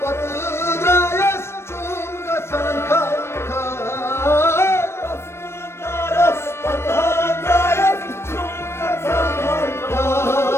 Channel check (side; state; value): right; late; 0.12 ms